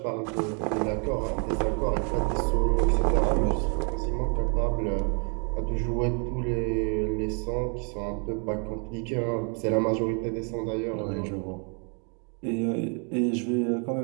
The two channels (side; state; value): left; quieter; 38.1 dB